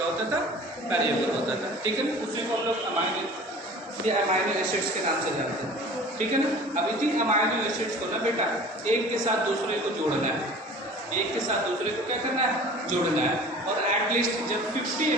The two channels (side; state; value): both; normal; correlation 0.43